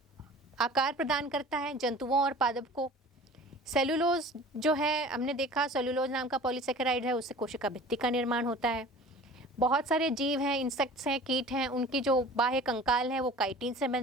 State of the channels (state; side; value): normal; both; correlation 0.43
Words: आकार प्रदान करता है जंतुओं और पादप को। सेलुलोज जो है हमने देखा, सेलुलोज नाम का पॉलीसेकेराइड है, उससे कोशिका भित्ति का निर्माण होता है। बहुत सारे जीव हैं, इंसेक्ट्स हैं, कीट हैं, उनकी जो बाह्य कंकाल है वो काइटिन से